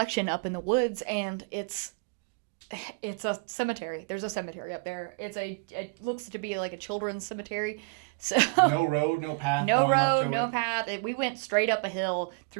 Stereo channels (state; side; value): quieter; left; 32.3 dB